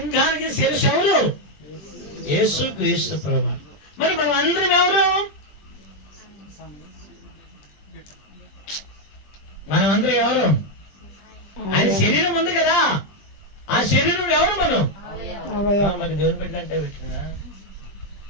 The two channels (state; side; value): late; right; 20 ms